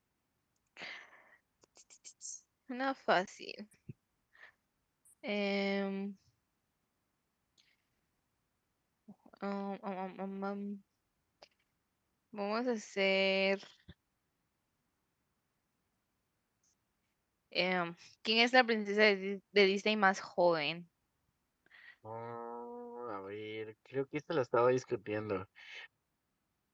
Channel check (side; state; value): both; identical; correlation 1.00